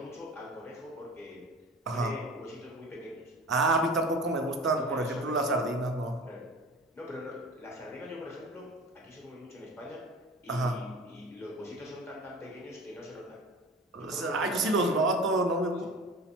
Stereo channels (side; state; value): both; normal; correlation 0.37